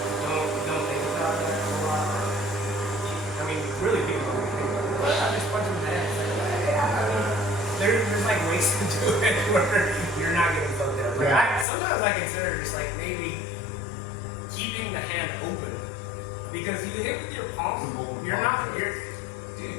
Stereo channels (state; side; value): drops out; right; at 11.7 s